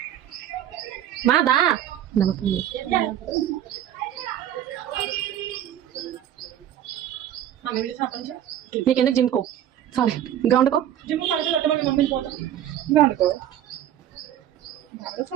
మాదా నీకెందుకు జిమ్కో చాలే గ్రౌండ్కో. జిమ్ పడుతుంది మమ్మీని పోతాం గ్రౌండ్కో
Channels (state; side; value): quieter; left; 11.1 dB